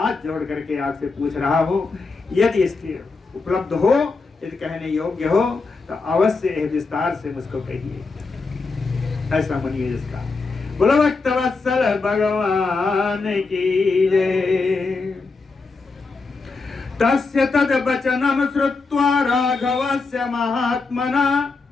जोड़ करके आपसे पूछ रहा हूँ, यदि इसके उपलब्ध हो, यदि कहने योग्य हो तो अवश्य विस्तार से मुझको कहिए। ऐसा मुनि है जिसका। बोलो भक्तवत्सल भगवान की जय। तस्य तद वचनम श्रुत्वा राघवस्य महात्मना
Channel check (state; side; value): quieter; right; 4.1 dB